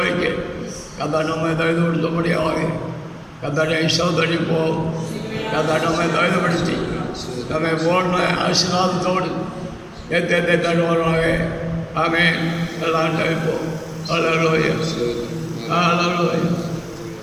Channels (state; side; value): identical; both; correlation 1.00